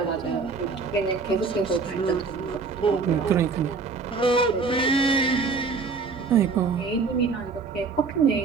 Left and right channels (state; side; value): quieter; left; 4.6 dB